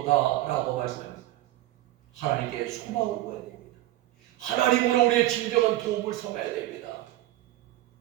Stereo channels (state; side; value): quieter; left; 15.7 dB